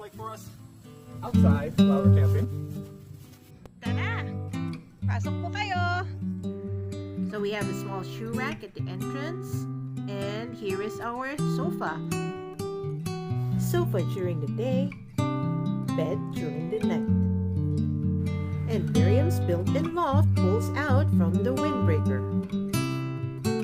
for us outside while we're camping. Tara! Pasok po kayo! So we have a small shoe rack at the entrance, and here is our sofa. Sofa during the day, bed during the night. And Miriam's built-in loft pulls out from the windbreaker.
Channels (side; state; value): both; identical; correlation 1.00